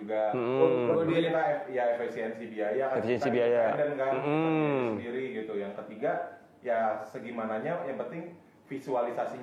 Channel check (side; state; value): both; identical; correlation 1.00